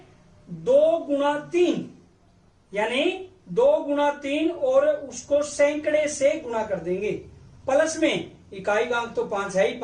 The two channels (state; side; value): identical; both; correlation 1.00